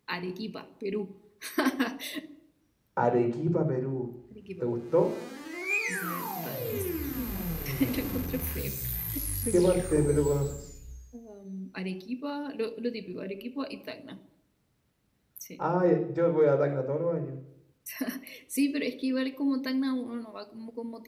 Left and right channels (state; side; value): identical; both; correlation 1.00